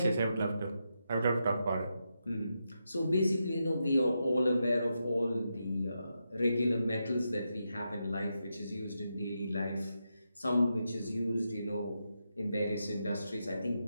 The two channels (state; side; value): inverted; both; correlation -0.85